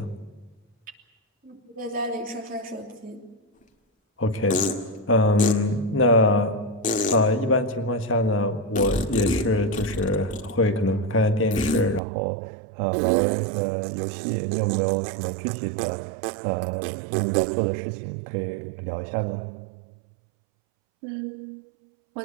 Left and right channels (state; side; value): drops out; left; at 12.0 s